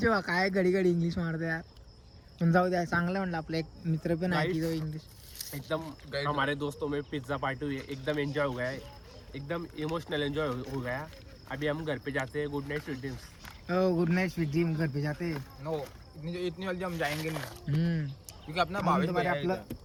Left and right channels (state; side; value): identical; both; correlation 1.00